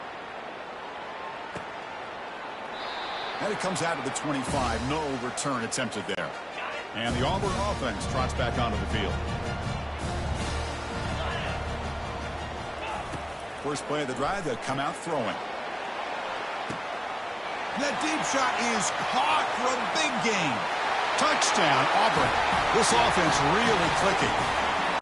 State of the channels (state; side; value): identical; both; correlation 1.00